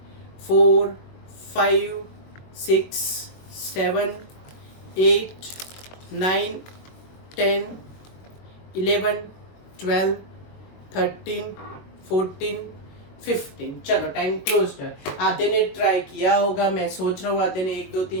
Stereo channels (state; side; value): late; right; 22 ms